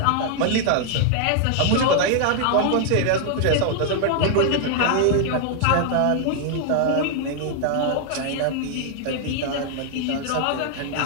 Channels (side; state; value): both; different; correlation 0.00